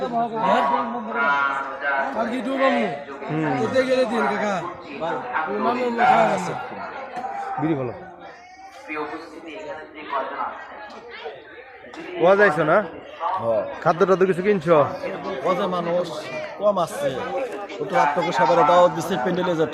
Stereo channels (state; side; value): identical; both; correlation 1.00